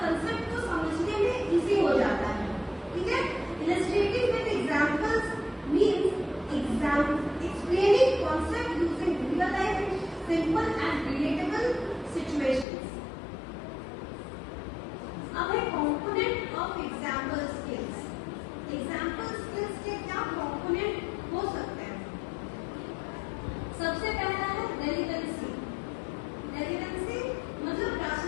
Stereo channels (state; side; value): drops out; right; at 12.7 s